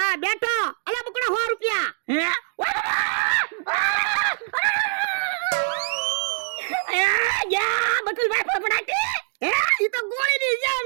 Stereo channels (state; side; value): silent; left; digital silence